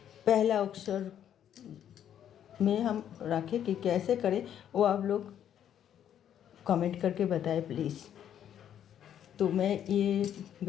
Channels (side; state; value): right; quieter; 9.9 dB